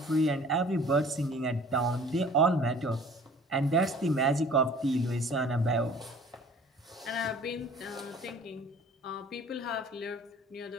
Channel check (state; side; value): normal; both; correlation 0.49